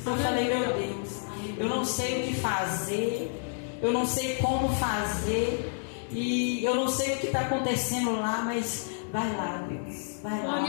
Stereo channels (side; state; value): right; silent; digital silence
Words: Eu falei: meu Deus, eu não sei o que fazer, eu não sei como fazer, e eu não sei o que está acontecendo lá, mas vai lá, Deus, vai lá.